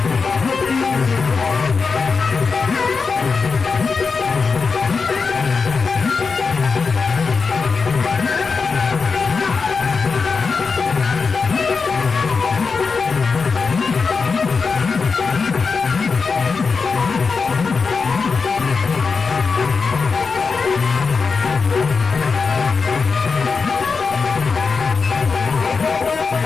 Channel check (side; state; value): right; quieter; 4.9 dB